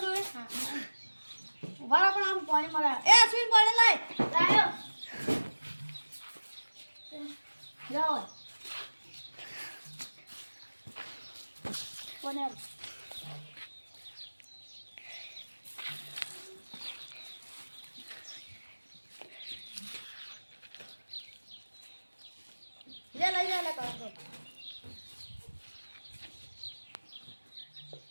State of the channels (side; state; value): both; inverted; correlation -1.00